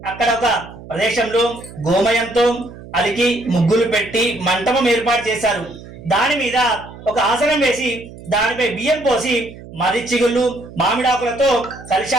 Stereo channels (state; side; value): noise; right; hum, 16 dB below the sound